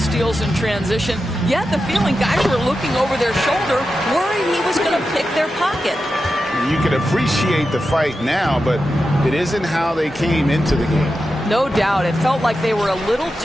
in transition. You had the feeling guys were looking over their shoulder, worried he was going to pick their pocket. You can appreciate the fight now, but it isn't how they came into the game. No doubt. It felt like they were a little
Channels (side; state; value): both; normal; correlation 0.90